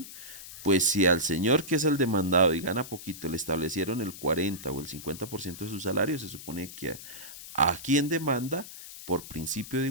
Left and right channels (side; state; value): left; noise; hiss, 14 dB below the sound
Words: pues si al señor que es el demandado y gana poquito le establecieron el 40 o el 50% de su salario, se supone que a quien demanda, por principio de